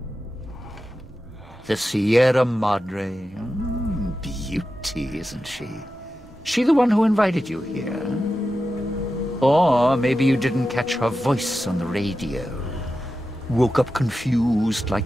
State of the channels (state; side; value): normal; both; correlation 0.91